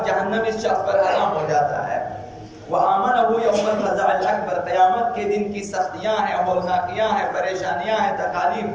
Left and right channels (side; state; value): both; identical; correlation 1.00